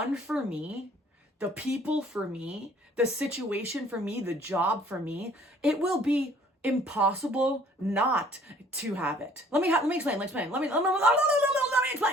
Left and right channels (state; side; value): normal; both; correlation 0.56